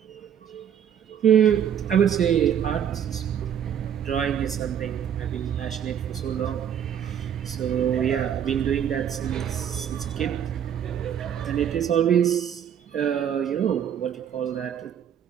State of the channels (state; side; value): quieter; left; 9.0 dB